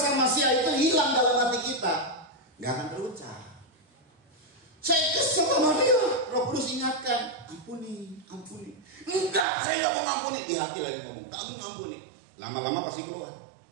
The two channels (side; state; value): left; drops out; at 9.5 s